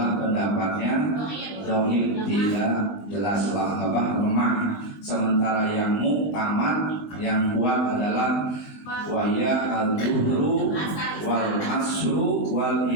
pendapatnya dhaif, tidak jelas lemah. Sementara yang muktamad yang kuat adalah waya al-duhru wal asru wal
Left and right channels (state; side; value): late; right; 19 ms